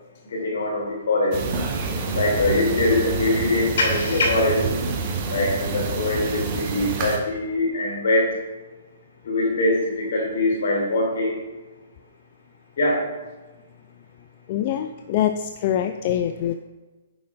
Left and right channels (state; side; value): inverted; both; correlation -0.52